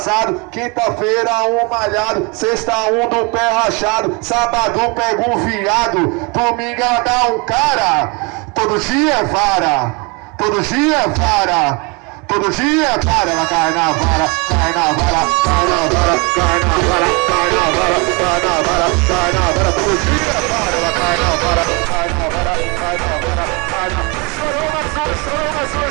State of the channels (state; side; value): quieter; left; 29.9 dB